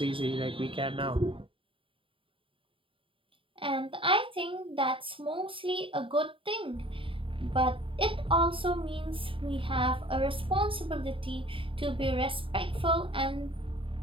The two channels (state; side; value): late; left; 0.25 ms